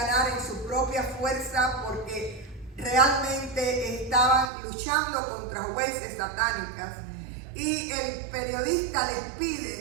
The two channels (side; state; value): left; drops out; at 4.5 s